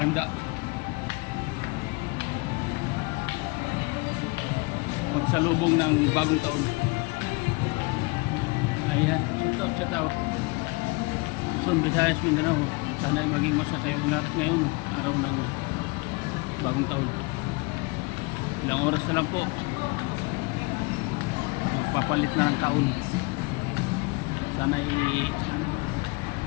Pagsalubong ng bagong taon. Ayan, shout out. Luzon, Visayas, Mindanao. Sana ay maging masaya kayong lahat ngayon, araw ng bagong taon. Ilang oras na lang po. Magpapalit na ng taon. Sana ay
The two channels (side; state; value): right; quieter; 27.3 dB